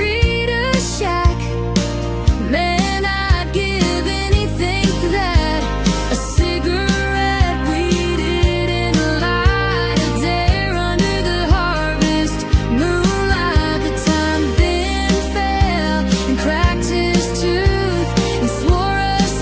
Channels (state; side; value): identical; both; correlation 1.00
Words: shack. Man, I'd give anything for that. A cigarette we didn't light, a dare under the harvest moonlight. The time Ben fell and cracked his tooth and swore